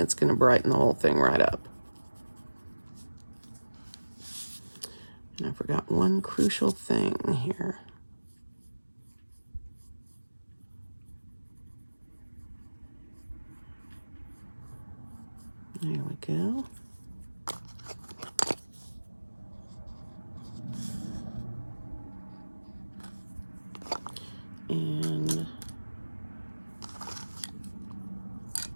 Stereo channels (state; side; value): inverted; both; correlation -1.00